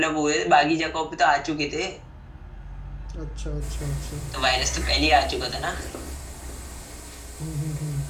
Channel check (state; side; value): identical; both; correlation 1.00